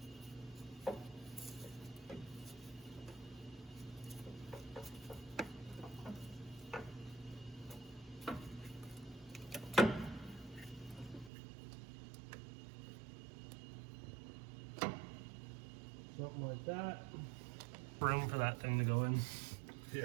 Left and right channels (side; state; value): left; drops out; at 11.3 s